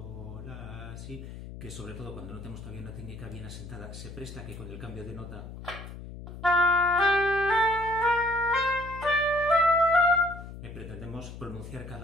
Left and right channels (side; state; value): left; noise; hum, 12 dB below the sound